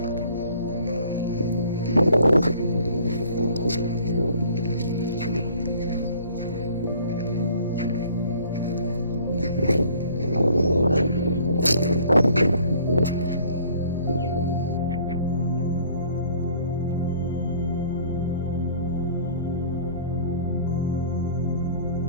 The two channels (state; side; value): inverted; both; correlation -0.53